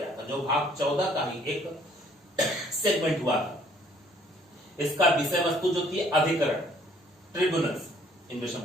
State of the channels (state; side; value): normal; both; correlation 0.61